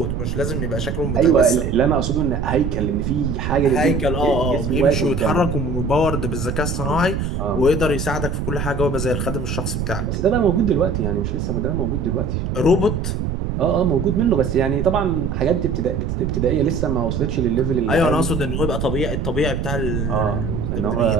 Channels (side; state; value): right; noise; rumble, 2 dB below the sound